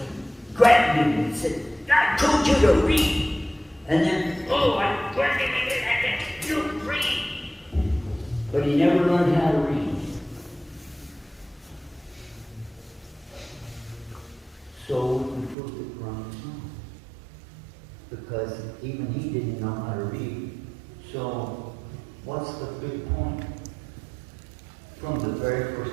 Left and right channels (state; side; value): drops out; left; at 15.6 s